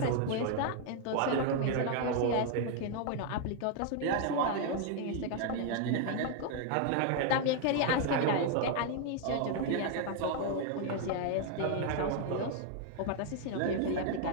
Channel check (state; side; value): different; both; correlation 0.00